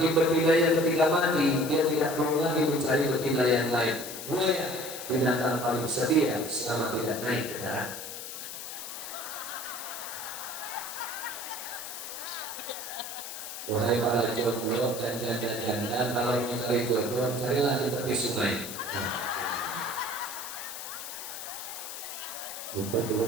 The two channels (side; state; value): left; noise; hiss, 9 dB below the sound